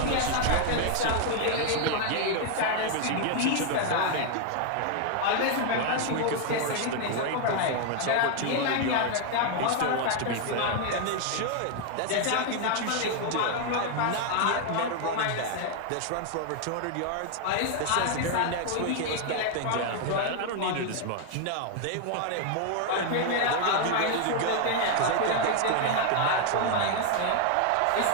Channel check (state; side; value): different; both; correlation 0.00